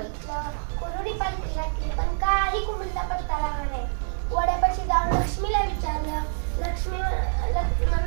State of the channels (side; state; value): left; silent; 59 dB below the other